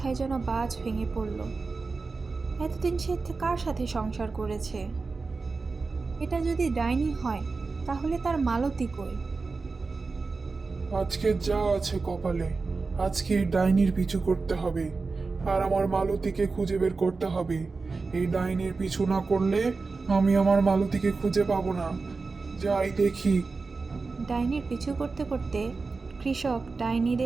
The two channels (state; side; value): quieter; left; 4.1 dB